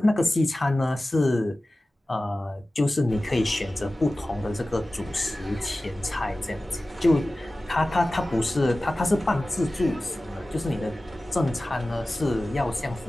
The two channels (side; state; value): both; normal; correlation 0.96